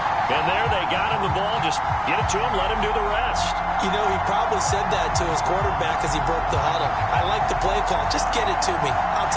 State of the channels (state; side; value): identical; both; correlation 1.00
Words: And there they got him the ball. Just get it to him, let him do the rest. You know, he probably said that to his quarterback as he broke the huddle. I like the play call. Just get it to me. I'll